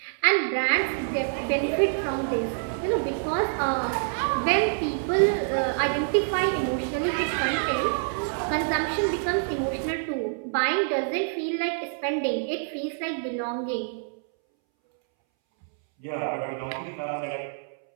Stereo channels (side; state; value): left; silent; 61 dB below the other